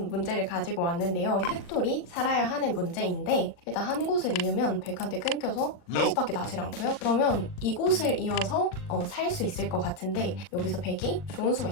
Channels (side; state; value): right; late; 40 ms